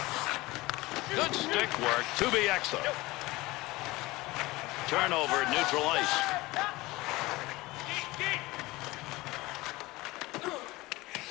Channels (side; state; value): right; quieter; 20.5 dB